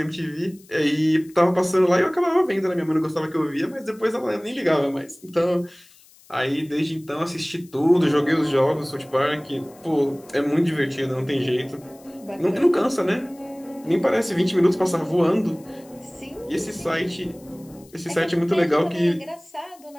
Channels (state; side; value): noise; left; hiss, 27 dB below the sound